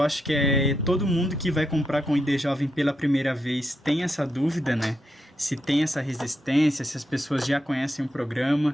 acho que todo mundo que vai comprar com ID Jovem pela primeira vez tem essa dúvida, né? Se tem essa resistência, se as pessoas já conhecem o programa,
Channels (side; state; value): both; normal; correlation 0.83